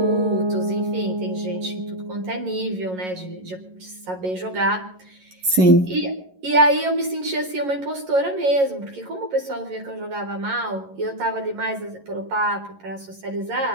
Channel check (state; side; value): late; left; 11 ms